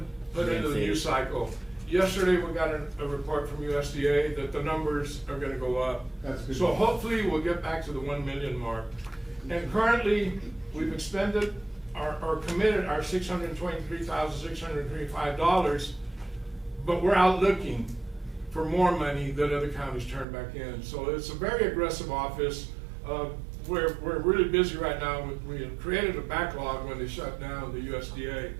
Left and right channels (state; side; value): drops out; left; at 20.2 s